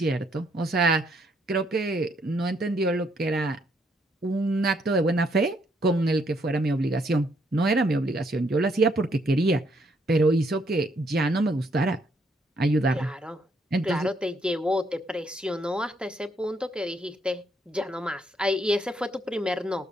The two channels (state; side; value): normal; both; correlation 0.72